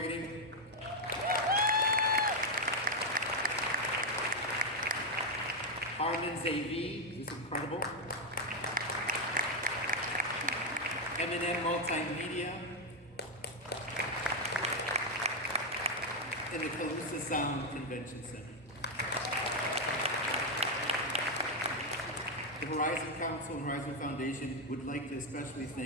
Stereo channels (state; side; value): normal; both; correlation 0.03